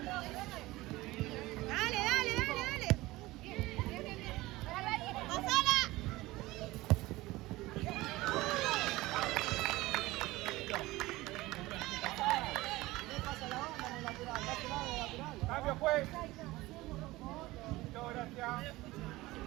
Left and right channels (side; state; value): left; quieter; 19.2 dB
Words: Dale, dale, dale, dale. Pasala. Cambio, juez. Muchas gracias.